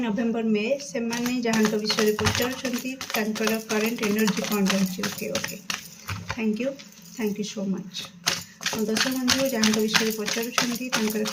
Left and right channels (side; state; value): both; identical; correlation 1.00